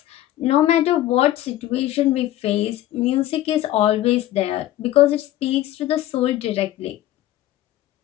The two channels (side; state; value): right; quieter; 14.1 dB